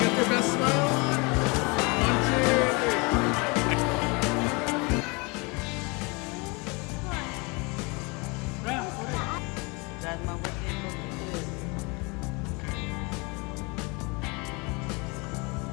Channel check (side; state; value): right; quieter; 28.7 dB